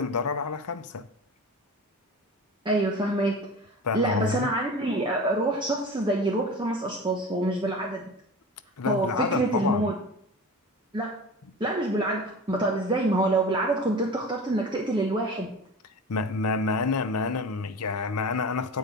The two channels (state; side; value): normal; both; correlation 0.33